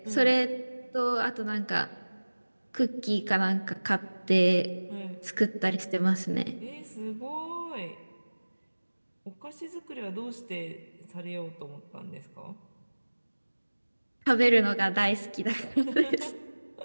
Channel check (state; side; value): inverted; both; correlation -1.00